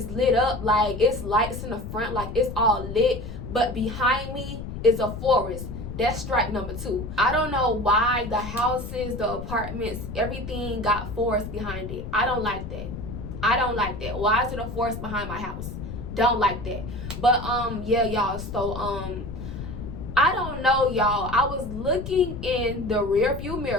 lit up. Like, it's lights in the front. Like, it's all lit. But behind me is a forest. That's strike number 2. I don't know why the houses, the apartments, everything got forest behind it. I don't like that. I don't like that. Why is it a forest behind my house? Don't like that. But yeah, y'all. So I don't know, y'all. I was looking in the rear view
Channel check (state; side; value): noise; left; rumble, 8 dB below the sound